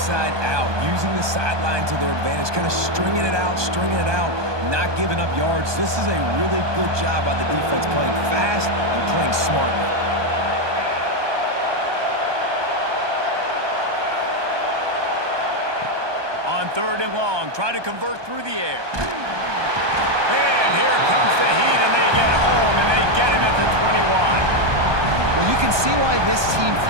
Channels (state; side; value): late; left; 1.2 ms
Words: out, using the sideline to their advantage, kind of stringing it out, not giving up yards. This is a really good job by the defense, playing fast and playing smartly. On third and long, try to convert through the air. And here comes the heat, and they get home, and they get him at the 21. Well, you can see why this team